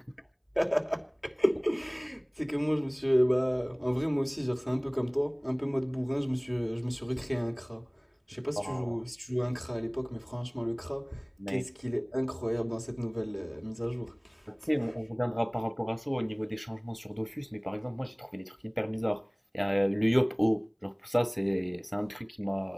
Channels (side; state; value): both; identical; correlation 1.00